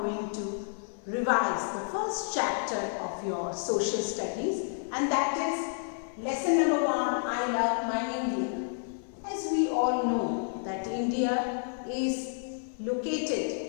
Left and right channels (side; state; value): right; silent; digital silence